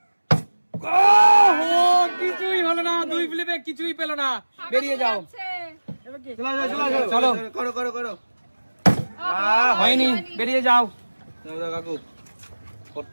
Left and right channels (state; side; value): inverted; both; correlation -1.00